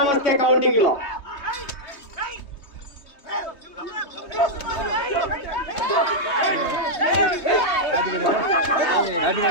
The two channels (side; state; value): right; late; 3.2 ms